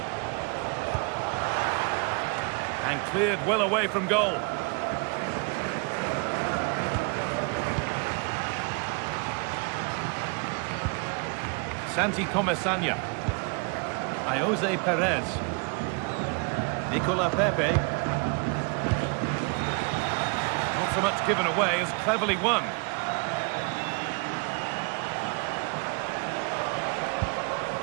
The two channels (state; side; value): quieter; left; 34.4 dB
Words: And cleared well away from goal. Santi Comesaña. Jose Perez. Nicola Pepe. Not so much given away as cleverly won.